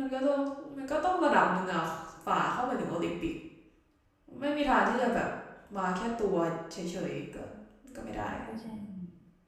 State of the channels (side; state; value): both; identical; correlation 1.00